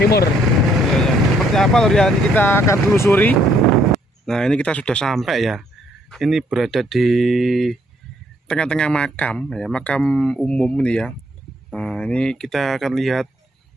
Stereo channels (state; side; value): normal; both; correlation 0.68